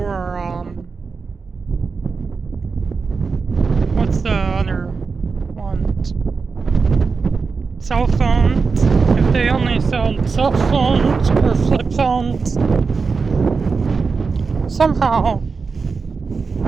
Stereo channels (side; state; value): left; quieter; 4.8 dB